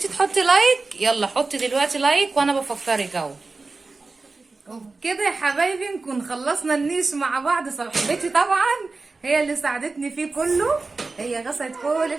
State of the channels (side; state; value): left; quieter; 3.8 dB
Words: تحطي لايك يلا حطي دلوقتي لايك وانا بفكرك اهو. وبكده يا حبايبي نكون خلصنا النيش مع بعض. صاحبتي طبعا هي اللي ساعدتني فيه كله، هي غسلت كل